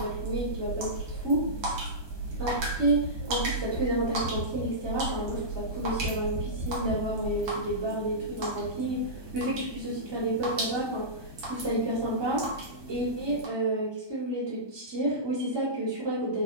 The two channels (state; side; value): late; left; 1.2 ms